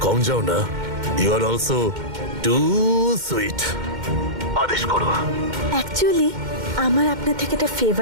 কম যাও না। You are also too sweet. আদেশ করো। অ্যাকচুয়ালি আমার আপনার থেকে একটা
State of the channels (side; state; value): left; late; 2.1 ms